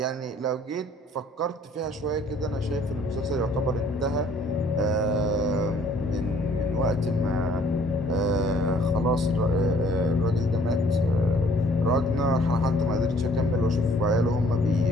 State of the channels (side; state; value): both; normal; correlation 0.59